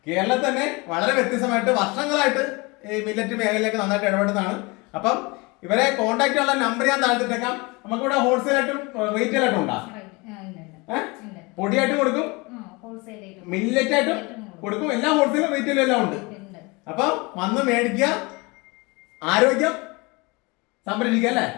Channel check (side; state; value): right; quieter; 26.2 dB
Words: കേരളത്തിൽ തന്നെ വളരെ വ്യത്യസ്തമായിട്ട് വർഷങ്ങളായിട്ട് ഈ മില്ലറ്റ് മേഖലയിലേക്ക് നന്നായിട്ട് ഇടപെടുന്നതാണ്. അപ്പം ഇവരെ കോൺടാക്ട് ചെയ്യാനുള്ള നമ്പർ ഞാൻ താഴ്ത്തിട്ടേക്കാം. നമുക്കിവിടെ ഹോൾസെയിൽ ആയിട്ടും റീറ്റെയിൽ ആയിട്ടും ഉണ്ടാ? പൊടിയായിട്ടും കൊടുക്കും, മില്ലറ്റ് ആയിട്ടും കൊടുക്കും. എല്ലാം ഹോൾസെയിലും റീറ്റെയിലും എല്ലാം ഉണ്ട്. അപ്പം വന്ന് മേടിക്കുക, ആരോഗ്യം സംരക്ഷിക്കുക അല്ലേ?